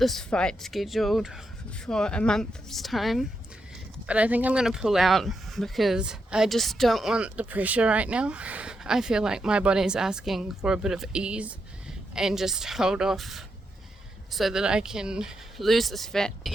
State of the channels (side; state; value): both; normal; correlation 0.83